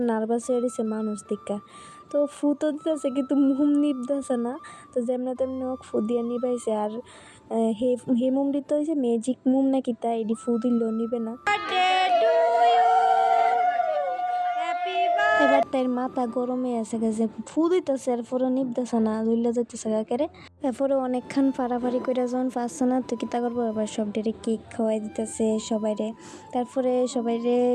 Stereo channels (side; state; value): both; identical; correlation 1.00